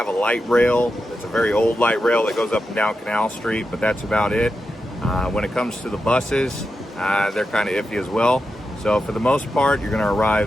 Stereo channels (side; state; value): both; normal; correlation 0.88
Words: a light rail. It's a very old light rail that goes up and down Canal Street, but that's about it. When it comes to the buses, they're kind of iffy as well. So for the most part, you're going to